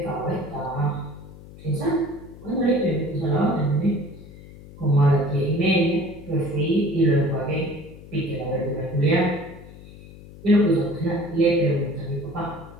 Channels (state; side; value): noise; left; hum, 18 dB below the sound